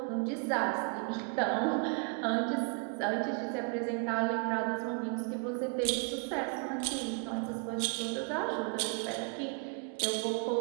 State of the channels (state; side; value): quieter; left; 39.6 dB